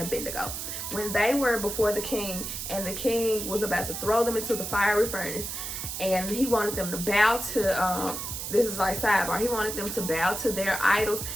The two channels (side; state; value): right; noise; hiss, 5 dB below the sound